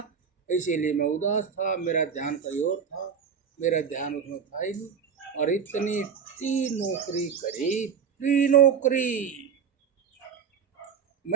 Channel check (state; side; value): quieter; left; 6.9 dB